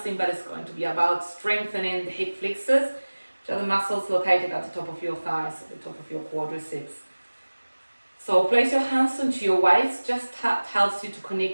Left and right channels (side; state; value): both; inverted; correlation -1.00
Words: but it's going to be about strengthening the hip flexors, which are the muscles located at the top of your thighs, at the top of your quadriceps. So place your hands onto your waist. Just that helps you to